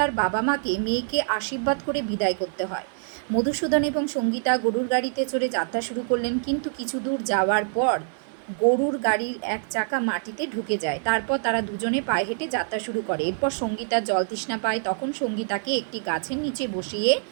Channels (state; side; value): silent; left; digital silence